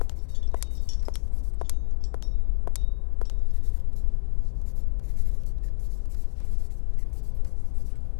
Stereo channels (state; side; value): silent; right; digital silence